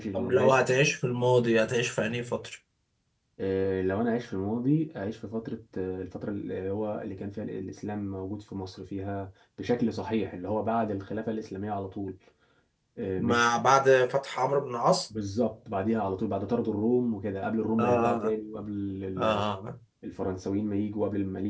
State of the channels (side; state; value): both; identical; correlation 1.00